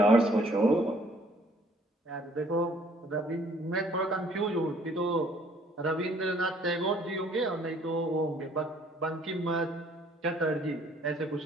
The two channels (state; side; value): normal; both; correlation 0.60